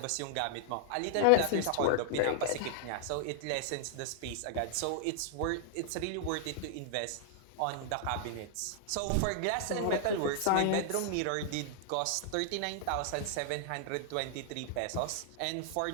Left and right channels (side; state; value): both; different; correlation 0.00